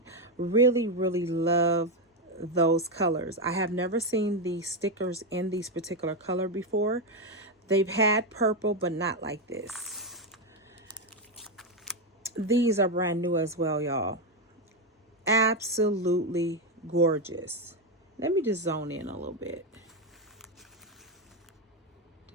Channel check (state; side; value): normal; both; correlation 0.07